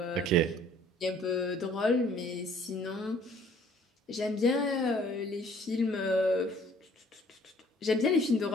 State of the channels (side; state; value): both; normal; correlation 0.57